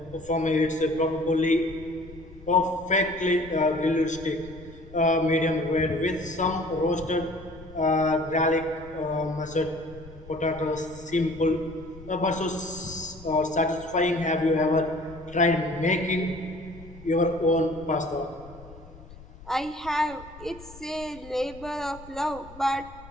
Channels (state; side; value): noise; left; rumble, 19 dB below the sound